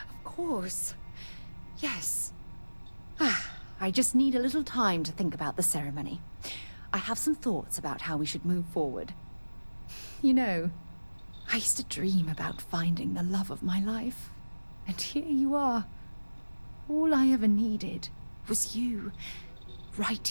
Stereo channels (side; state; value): both; inverted; correlation -1.00